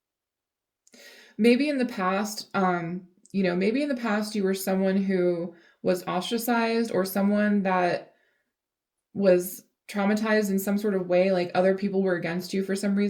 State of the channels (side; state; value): both; identical; correlation 1.00